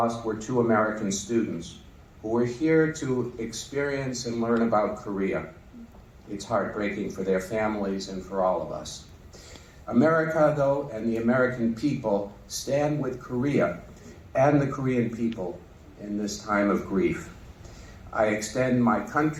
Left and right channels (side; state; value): both; identical; correlation 1.00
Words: were 2 American students who were here to experience and learn about Korea. It's heartbreaking for their families and for all of us. America, though, and the American people stand with Korea and the Korean people in this time of grief. I extend my